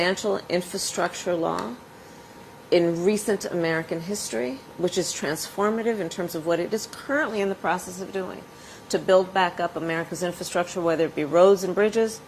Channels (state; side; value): identical; both; correlation 1.00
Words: infrastructure law in recent American history, which is transformative in terms of what it is currently in the process of doing to build back up America's infrastructure, whether it be roads and bridges,